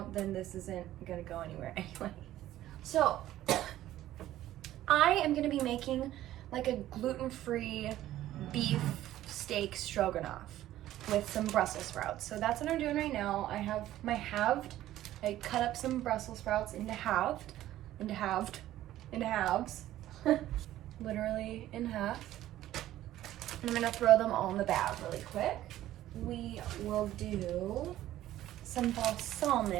then this isn't gonna go anywhere anyway. So I am gonna be making like a gluten-free beef steak stroganoff with some Brussels sprouts. So that's what I'm doing right now. I have my halved. I cut up some Brussels sprouts into halves, literally in half. And I'm gonna throw them all in the bag really quick. We will do some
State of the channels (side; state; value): left; quieter; 13.9 dB